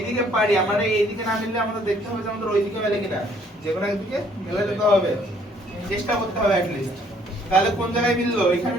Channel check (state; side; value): normal; both; correlation 0.63